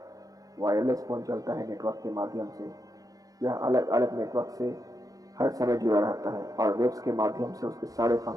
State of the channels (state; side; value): late; left; 0.17 ms